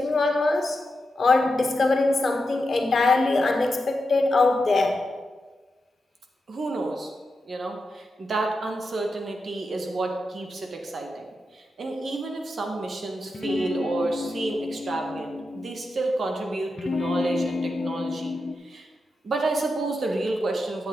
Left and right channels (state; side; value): normal; both; correlation 0.88